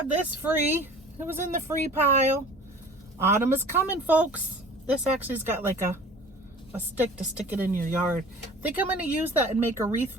this free. It was in the free pile. Autumn is coming, folks. This actually's got like a stick to stick it in your yard. I think I'm going to use that and make a wreath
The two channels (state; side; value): normal; both; correlation 0.44